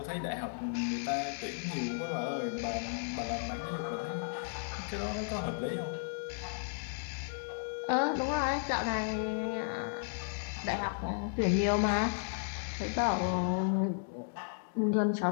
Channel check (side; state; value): right; silent; digital silence